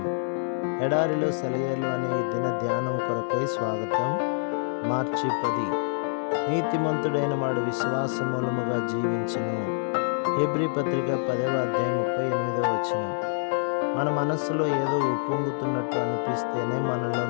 ఎడారిలో సెలయేర్లు అనే ఈ దిన ధ్యానం కొరకై స్వాగతం. మార్చి 10. నీతిమంతుడైన వాడు విశ్వాస మూలముగా జీవించును. హెబ్రీ పత్రిక 10వ అధ్యాయం 38వ వచనం. మన మనస్సులో ఏదో ఉప్పొంగుతున్నట్టు అనిపిస్తేనే మనలో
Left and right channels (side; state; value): right; silent; digital silence